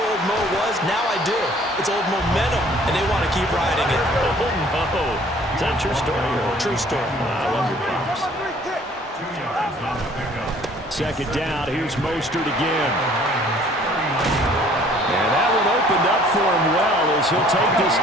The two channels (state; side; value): normal; both; correlation 0.56